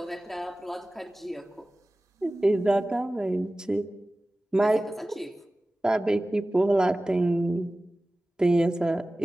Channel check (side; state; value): both; normal; correlation 0.97